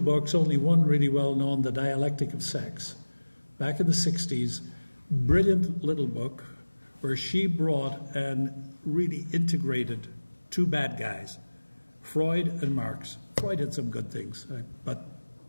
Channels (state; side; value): inverted; both; correlation -1.00